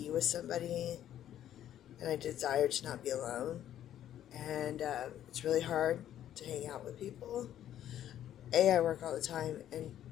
with somebody, and I desire to not be alone. And it's really hard to hang out with people. A, I work all the time, and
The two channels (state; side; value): quieter; right; 11.3 dB